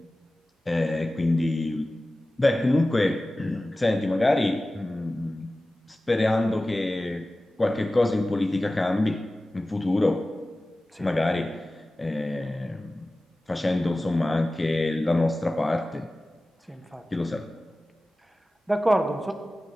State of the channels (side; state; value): both; normal; correlation 0.96